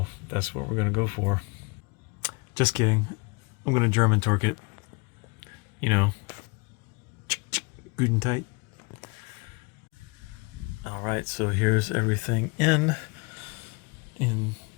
that's what we're going to go for. Just kidding. I'm going to German torque it. You know, good and tight. Alright, so here's everything in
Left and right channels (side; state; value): right; quieter; 29.4 dB